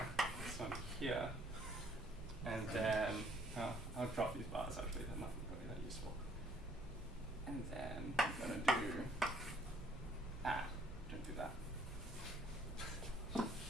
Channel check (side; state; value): both; normal; correlation 0.64